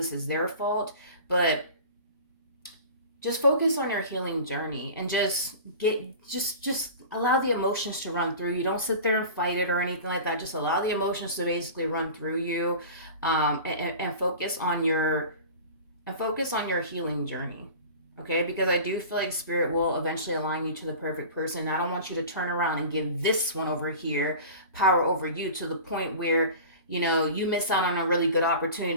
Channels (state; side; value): inverted; both; correlation -0.37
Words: is their fault. But just focus on your healing journey and just allow the emotions to run through you. Don't sit there and fight it or anything like that. Just allow the emotions to basically run through you, and focus on your healing journey. Okay, because I do feel like spirit will eventually align you to the perfect person. I don't want you to turn around and give this one over here power over you to the point where you miss out on a really good opportunity